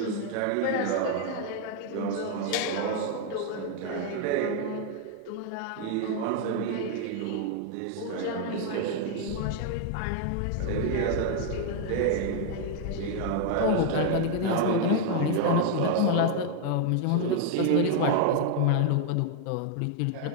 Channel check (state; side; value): different; both; correlation 0.00